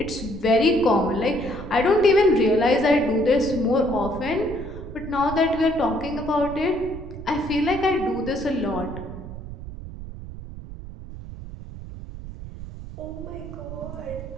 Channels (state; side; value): noise; right; rumble, 11 dB below the sound